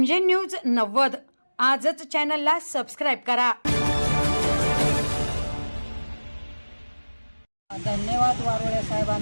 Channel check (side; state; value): both; inverted; correlation -1.00